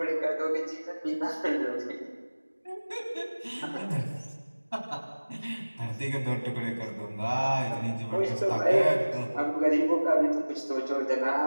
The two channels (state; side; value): inverted; both; correlation -1.00